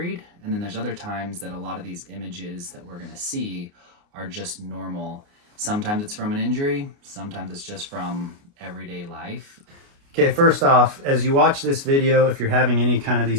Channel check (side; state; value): left; late; 29 ms